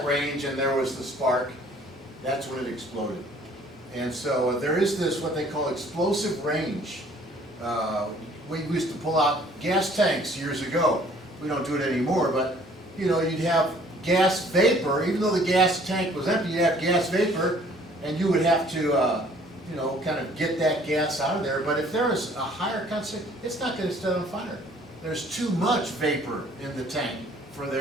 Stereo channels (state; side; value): normal; both; correlation 0.56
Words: range and there was the spark, that's when it exploded. And so there is this, what they call explosive range. We used to pull out gas tanks years ago. We don't do it anymore, but you know, you'd have gas vapor. Even though the gas tank was empty, you'd have gas vapor, and you would have to you know, kind of get that gas out of there. But if there is a higher concentration, it's not going to set on fire. There's too much vapor in the tank for